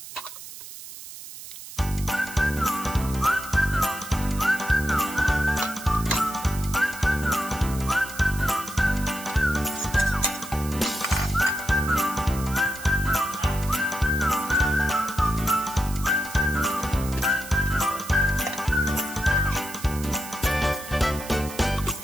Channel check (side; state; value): right; noise; hiss, 13 dB below the sound